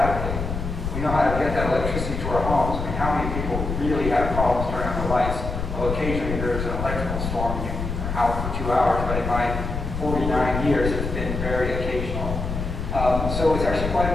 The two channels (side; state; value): left; noise; rumble, 4 dB below the sound